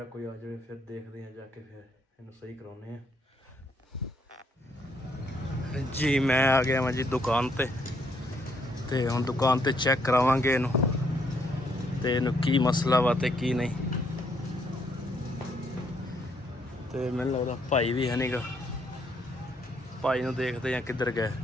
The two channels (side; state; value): both; normal; correlation 0.71